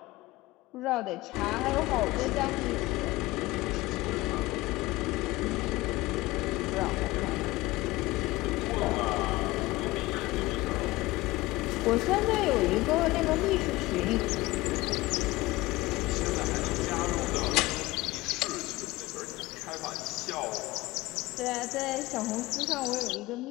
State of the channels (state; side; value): quieter; right; 19.7 dB